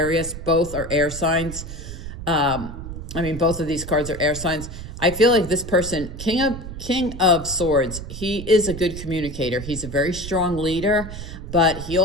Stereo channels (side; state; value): right; noise; rumble, 10 dB below the sound